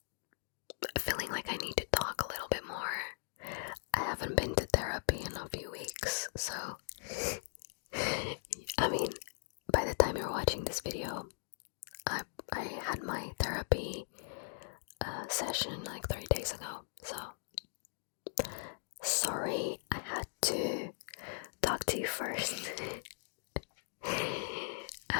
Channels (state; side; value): silent; right; digital silence